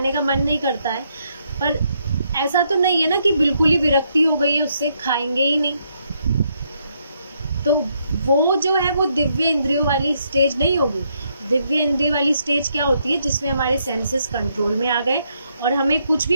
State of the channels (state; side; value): inverted; both; correlation -0.76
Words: का मन नहीं करता है, पर ऐसा तो नहीं है ना कि बिल्कुल ही विरक्ति हो गई है उससे, खाएंगे ही नहीं। तो वो जो है वो दिव्य इंद्रियों वाली स्टेज नहीं होगी। दिव्य इंद्रिय वाली स्टेज क्या होती है, जिसमें हमारे सेंसेस कंट्रोल में आ गए और हमें कुछ भी